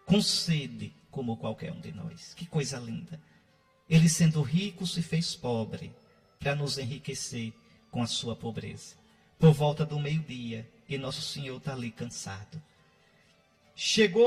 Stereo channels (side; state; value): both; identical; correlation 1.00